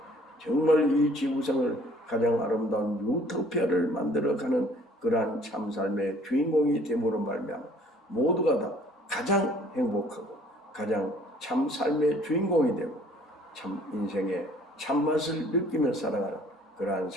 정말 이 지구상을 가장 아름다운 유토피아를 만들어가는 그러한 참삶의 주인공이 됨으로 말미암아 모두가 다 가장 행복하고 가장 참삶의 주인공이 되고 참 인생의 참맛을 느끼며 살아가는 그러한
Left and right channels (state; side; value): normal; both; correlation 0.56